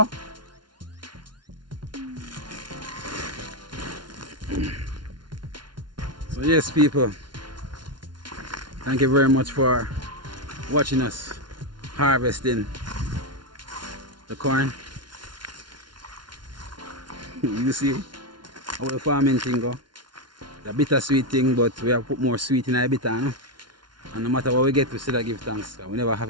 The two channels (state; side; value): late; left; 0.71 ms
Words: So yes, people, thank you very much for watching us harvesting the corn. You see how the farming thing go. The bittersweet thing, but we have put more sweet in our bitter, no? And no matter what we get, we still give thanks. We never have